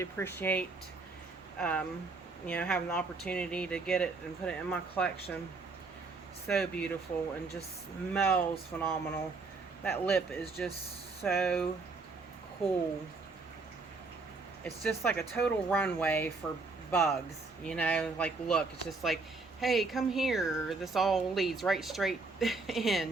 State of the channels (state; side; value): quieter; left; 3.9 dB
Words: appreciate, you know, having the opportunity to get it and put it in my collection. So beautiful, and just smells phenomenal. That lip is just so cool. It's just like a total runway for bugs, you know, like, look, it's just like, hey, come here. This all leads right straight